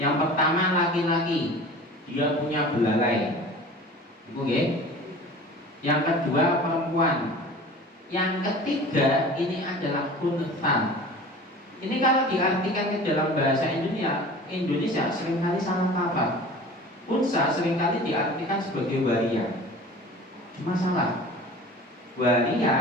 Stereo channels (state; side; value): normal; both; correlation 0.40